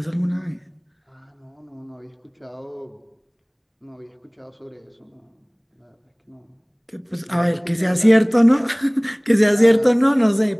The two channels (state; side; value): identical; both; correlation 1.00